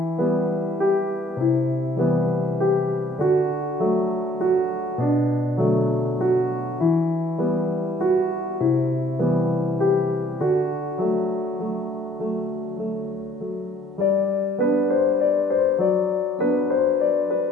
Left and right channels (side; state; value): both; normal; correlation 0.61